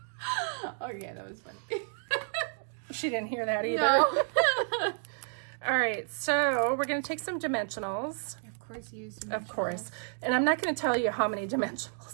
Okay, that was funny. She didn't hear that either. No. All right, so we're going to take some dimensionals. Of course you use dimensionals. Of course. And I'm not going to tell you how many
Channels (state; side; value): silent; left; 57 dB below the other